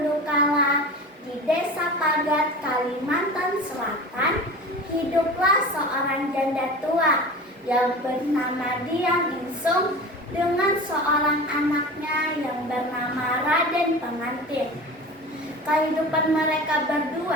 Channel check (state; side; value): normal; both; correlation 0.34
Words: kala, di Desa Pagat, Kalimantan Selatan, hiduplah seorang janda tua yang bernama Diang Insung dengan seorang anaknya yang bernama Raden Pengantin. Kehidupan mereka